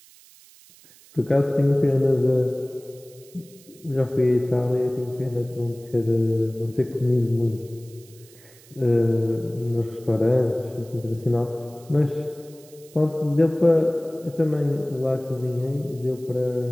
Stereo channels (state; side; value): noise; right; hiss, 25 dB below the sound